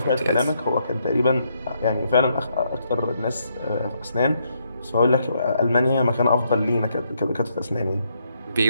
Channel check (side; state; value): both; inverted; correlation -0.76